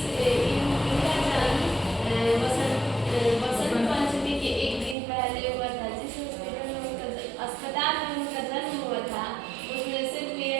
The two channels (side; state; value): left; drops out; at 5.0 s